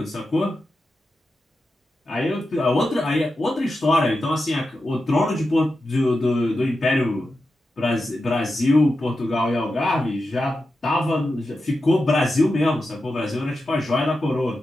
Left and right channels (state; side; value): normal; both; correlation 0.90